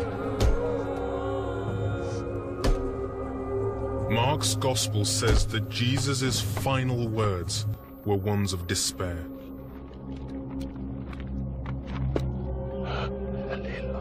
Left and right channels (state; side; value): identical; both; correlation 1.00